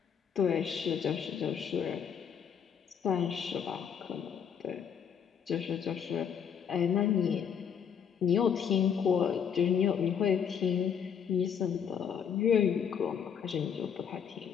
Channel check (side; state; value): right; quieter; 7.7 dB